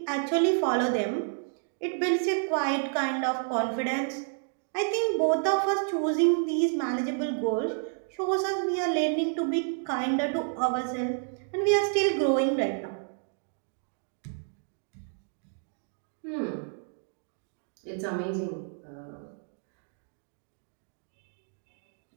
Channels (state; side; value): silent; left; 58 dB below the other